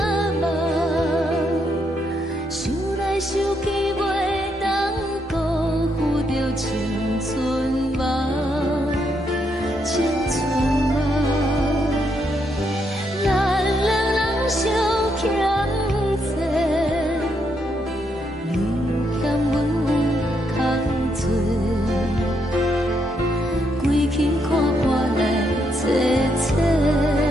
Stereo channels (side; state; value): both; normal; correlation 0.77